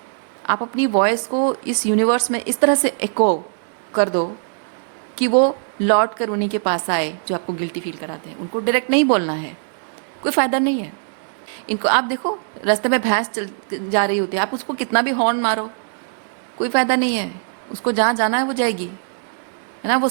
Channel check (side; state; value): left; silent; digital silence